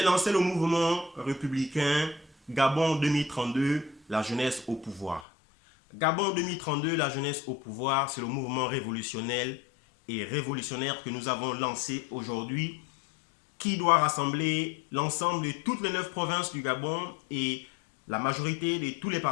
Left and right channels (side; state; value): right; drops out; at 5.2 s